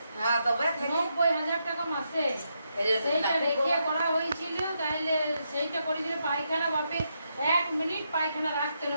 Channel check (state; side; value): inverted; both; correlation -0.81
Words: হ্যাঁ তবে 90,000 টাকা মাসে। সেইটা রেখে করা হয়েছিল, তাইলে সেইটা করেছিল পায়খানা বাপে 1 মিনিট পায়খানা রাখতে না,